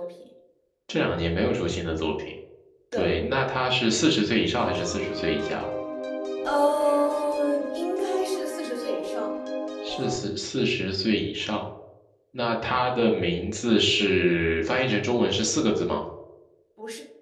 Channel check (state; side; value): identical; both; correlation 1.00